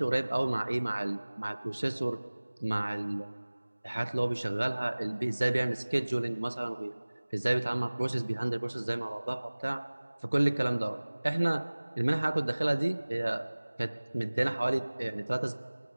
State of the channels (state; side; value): inverted; both; correlation -1.00